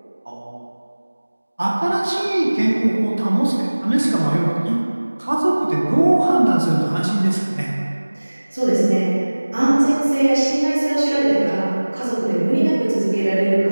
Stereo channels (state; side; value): inverted; both; correlation -1.00